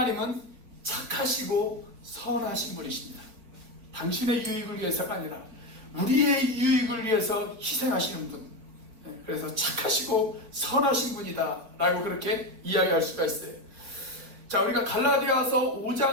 착하시고 선하신 분이십니다. 당신의 유익을 위해서가 아니라 우리의 유익을 위해서 희생하시는 분. 그래서 착하시고 선하신 분이다 라고 그렇게 이야기할 수가 있어요. 자, 우리가 갈라디아서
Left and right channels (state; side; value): late; left; 4.4 ms